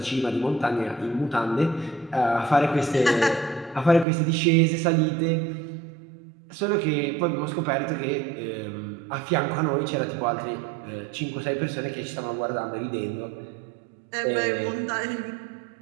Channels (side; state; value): left; drops out; at 4.0 s